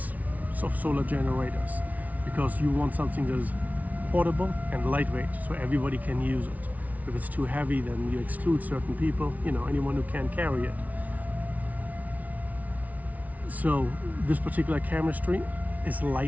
of solar generators, because you want something that is portable and lightweight, so everybody can use it. If it's too heavy, then you exclude certain people, anyone who can't carry it. So this particular chemistry is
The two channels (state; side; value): late; left; 0.072 ms